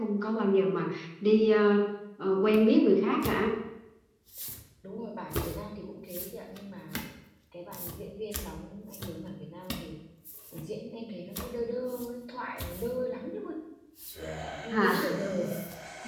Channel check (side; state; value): both; identical; correlation 1.00